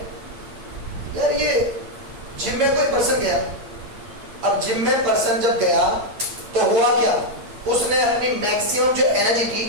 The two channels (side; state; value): left; late; 8.8 ms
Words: यार, ये जिम में कोई पर्सन गया, अब जिम में पर्सन जब गया तो हुआ क्या, उसने अपनी मैक्सिमम जो एनर्जी थी